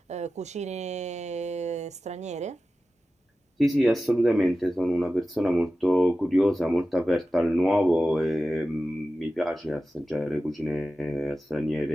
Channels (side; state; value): both; normal; correlation 0.94